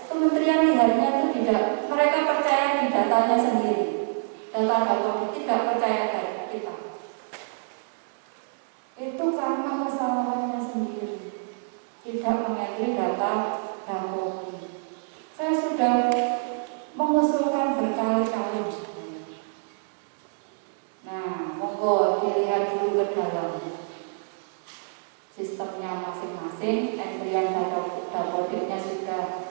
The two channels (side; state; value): left; silent; digital silence